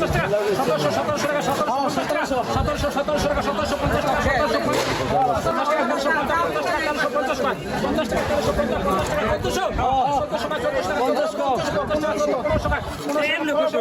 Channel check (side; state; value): both; identical; correlation 1.00